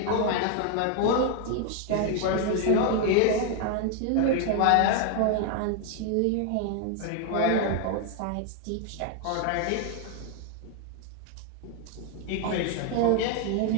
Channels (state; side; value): different; both; correlation 0.00